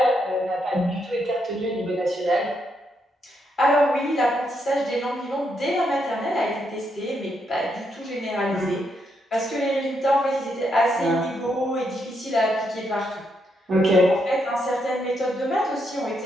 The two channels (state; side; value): normal; both; correlation 0.78